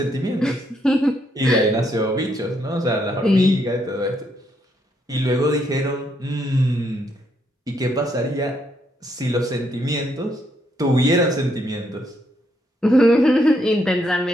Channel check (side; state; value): both; normal; correlation 0.75